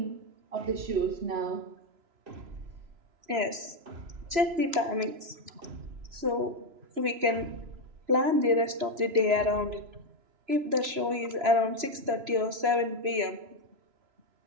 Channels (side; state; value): left; late; 3.0 ms